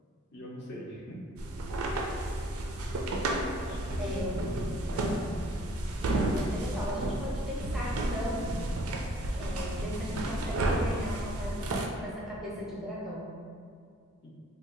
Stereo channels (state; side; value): normal; both; correlation 0.58